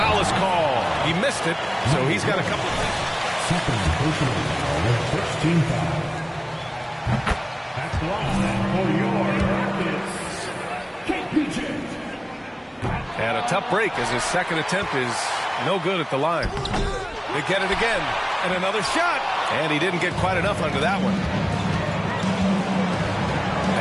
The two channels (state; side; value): identical; both; correlation 1.00